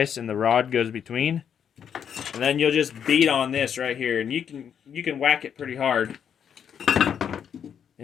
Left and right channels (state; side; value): quieter; right; 8.1 dB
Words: and the rod goes between. And then you'll just beat on this right here, and you can whack it pretty hard